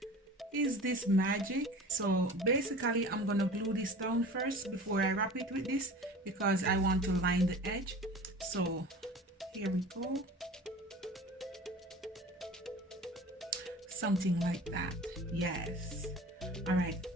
Is this magic? So basically I'm gonna glue this down first before I wrap it with this because I want to line the edge. So here we go, something like that. Yes. All right,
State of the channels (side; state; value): both; normal; correlation 0.39